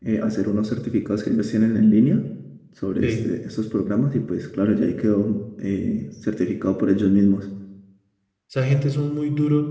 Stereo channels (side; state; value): both; identical; correlation 1.00